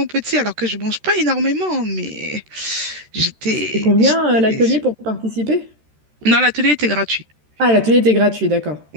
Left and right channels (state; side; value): late; left; 13 ms